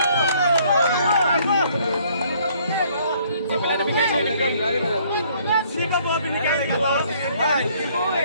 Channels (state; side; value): inverted; both; correlation -0.62